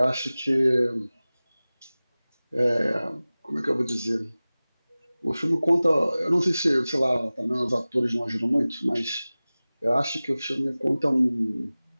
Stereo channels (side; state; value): both; inverted; correlation -0.98